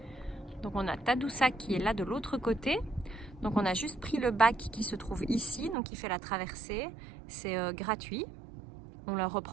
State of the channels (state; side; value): drops out; left; at 5.8 s